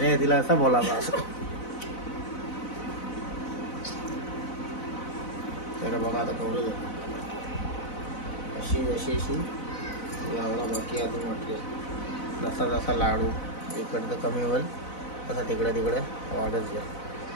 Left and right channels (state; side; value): late; right; 4.0 ms